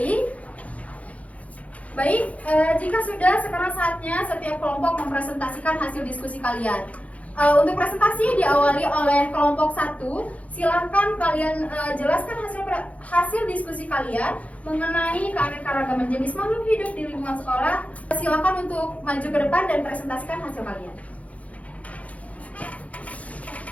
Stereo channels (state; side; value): late; right; 0.067 ms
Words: Baik, jika sudah, sekarang saatnya setiap kelompok mempresentasikan hasil diskusi kalian. Untuk presentasi diawali oleh kelompok 1. Silakan kalian jelaskan hasil diskusi kalian mengenai keanekaragaman jenis makhluk hidup di lingkungan sekolah. Silakan untuk maju ke depan dan presentasikan hasil kalian.